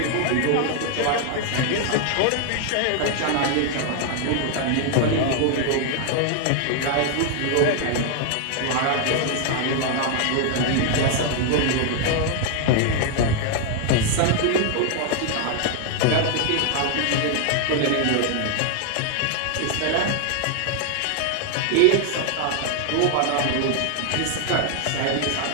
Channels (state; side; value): different; both; correlation 0.00